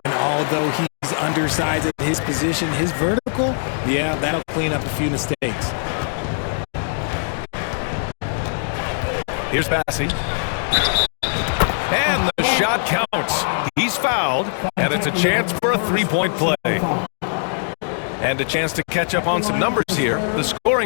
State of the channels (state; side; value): silent; right; digital silence